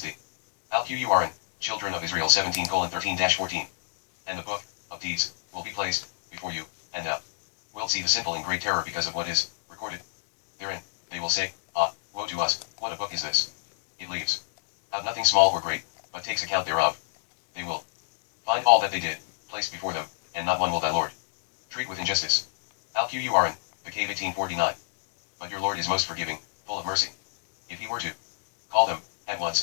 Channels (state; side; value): silent; right; digital silence